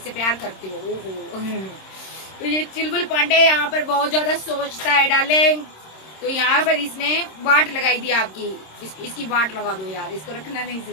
प्यार करते हो। ओहो तो ये चुलबुल पांडे यहाँ पर बहुत ज्यादा सोचता है डार्लिंग। तो यहाँ पर इसने वाट लगाई थी आपकी, इसकी वाट लगा दो यार, इसको रखना नहीं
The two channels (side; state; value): right; late; 26 ms